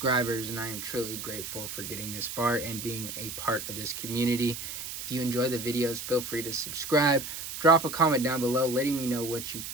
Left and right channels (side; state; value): right; noise; hiss, 7 dB below the sound